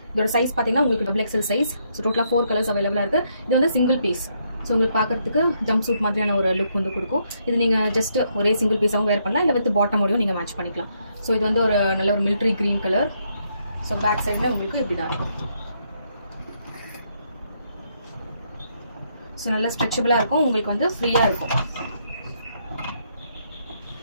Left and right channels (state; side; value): inverted; both; correlation -0.75